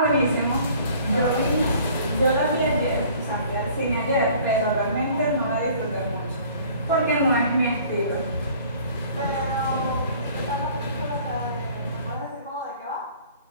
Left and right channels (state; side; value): inverted; both; correlation -0.53